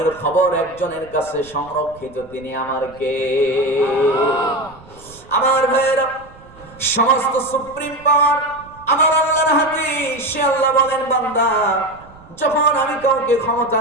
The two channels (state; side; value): noise; right; rumble, 23 dB below the sound